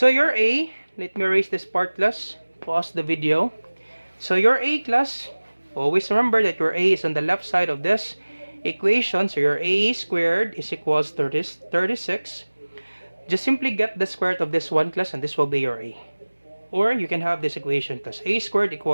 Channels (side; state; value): both; inverted; correlation -1.00